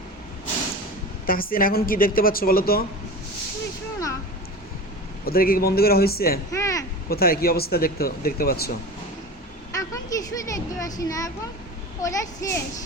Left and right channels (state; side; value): normal; both; correlation 0.32